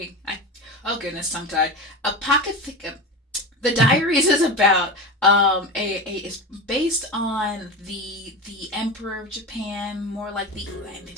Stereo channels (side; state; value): both; normal; correlation 0.24